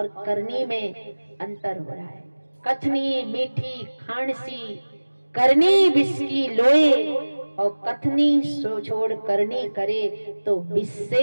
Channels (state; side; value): inverted; both; correlation -1.00